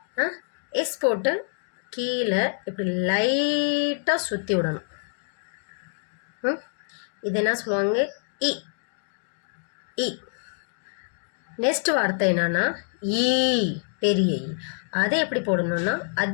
எஸ் போட்டு கீழே இப்படி லைட்டாக சுற்றி விடணும். இது என்ன சொல்லுவாங்க இ. இ. நெக்ஸ்ட் வார்த்தை என்னன்னா ஈ, பெரிய ஈ. அதை எப்படி போடணும்னா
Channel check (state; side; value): silent; right; digital silence